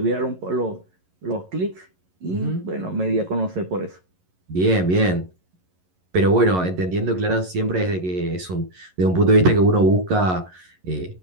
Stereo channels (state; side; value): late; left; 11 ms